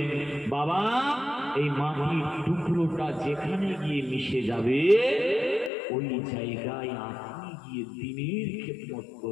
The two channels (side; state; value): right; drops out; at 5.7 s